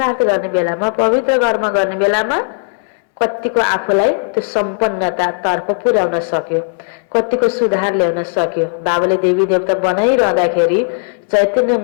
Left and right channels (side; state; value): right; silent; digital silence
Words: गर्ने बेलामा, पवित्र कर्म गर्ने बेलामा कतिको आफूलाई त्यो सम्पन्नता तर्फ पुर्याउन सक्यो, कतिको सुधार ल्याउन सक्यो। बाबाले देवी देवता बनाइरहँदाखेरि, चैतन्य